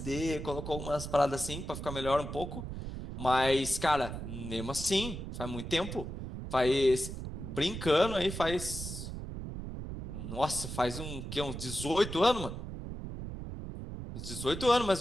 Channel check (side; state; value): right; noise; rumble, 7 dB below the sound